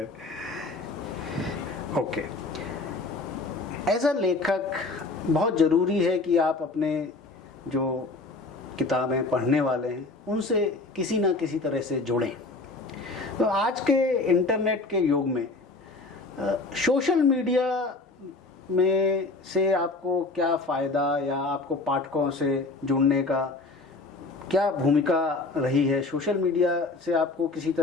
ओके। एज अ लेखक बहुत ज़रूरी है कि आप अपने जो किताबें पढ़ने वाले हैं उनसे किसी ना किसी तरह से जुड़ें। तो आज के इंटरनेट के युग में सोशल मीडिया में से आपको क्या फ़ायदा या आपको पाठकों से जुड़ने का क्या भूमिका रही है? सोशल मीडिया से आपको किसी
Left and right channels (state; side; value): quieter; right; 3.4 dB